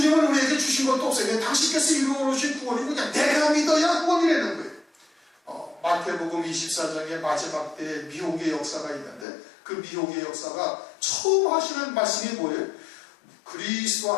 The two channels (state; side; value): drops out; right; at 9.2 s